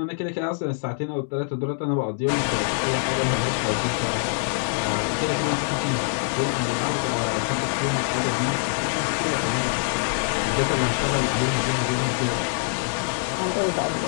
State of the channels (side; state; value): right; silent; digital silence